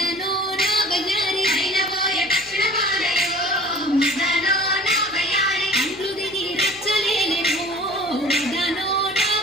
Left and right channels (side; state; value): left; noise; hum, 26 dB below the sound